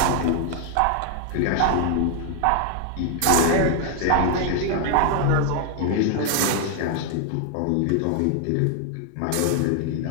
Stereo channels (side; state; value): both; different; correlation 0.00